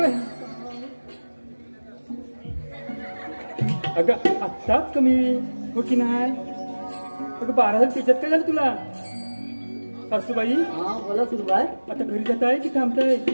अगं आत्ताच कमी हो की नाही अगं 12 त्याच्यात काय झालं तुला सासूबाई हा बोला सुनबाई आता घरी जात आहे की थांबताय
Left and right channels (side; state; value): both; inverted; correlation -1.00